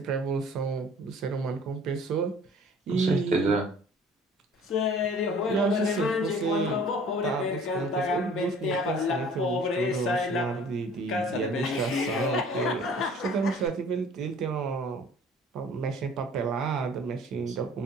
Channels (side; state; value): both; normal; correlation 0.50